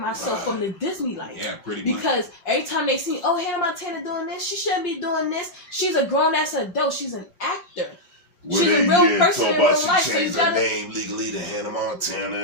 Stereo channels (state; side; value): late; right; 5.7 ms